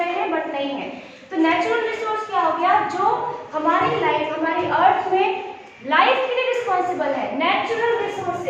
हैं बट नहीं है. तो नेचुरल रिसोर्स क्या हो गया? जो हमारी लाइफ, हमारी अर्थ में लाइफ के लिए रिस्पॉन्सिबल है. नेचुरल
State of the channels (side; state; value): both; identical; correlation 1.00